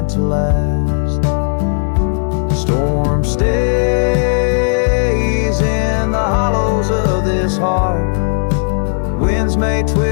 to last. The storm stays in the hollows of this heart. Winds may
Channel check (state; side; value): silent; right; digital silence